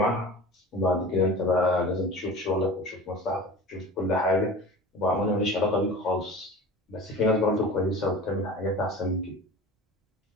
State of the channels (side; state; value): both; normal; correlation 0.36